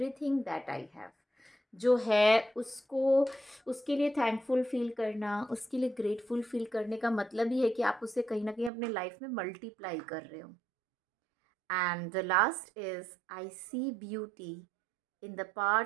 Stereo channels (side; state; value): left; drops out; at 8.7 s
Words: that I have. जो है उसको, उसके लिए थैंकफुल फील करना, उसके लिए ग्रेटफुल फील करने का मतलब ही है कि आप उसे कहीं ना कहीं अपने लाइफ में मल्टीप्लाई कर रहे हो। And the last is, I see beauty in the